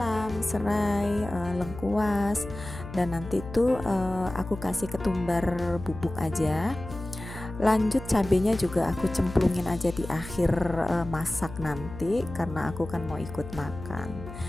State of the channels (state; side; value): noise; left; hum, 12 dB below the sound